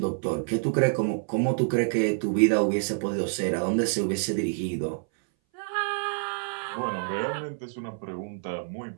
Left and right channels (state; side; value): silent; left; 58 dB below the other